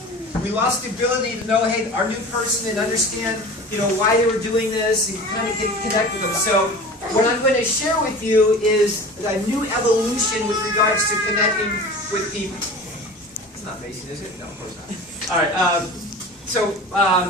We lost the ability to know, hey, our new person and understand, why they were doing this and kind of connect with them. So what I'm going to share with you is a new evolution with regards to connecting with people. It's not facing, is it? No, of course not. All right.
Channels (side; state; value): both; normal; correlation 0.37